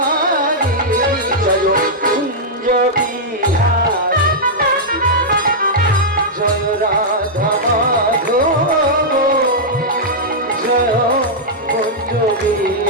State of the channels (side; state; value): both; normal; correlation -0.08